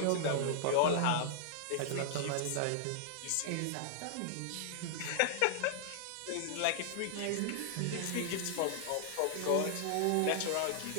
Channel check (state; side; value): different; both; correlation -0.01